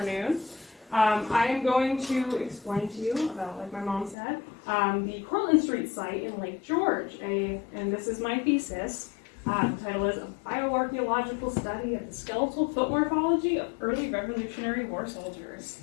I am going to explain to you about, like my mom said, the Cortland Street site in Lake George. And this is my thesis. The title is A Bioarchaeological Study of the Skeletal Foot Morphology of Early Revolutionary War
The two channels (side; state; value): right; drops out; at 4.2 s